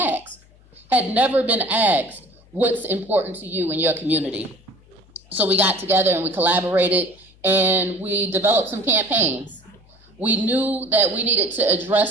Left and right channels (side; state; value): left; noise; hum, 28 dB below the sound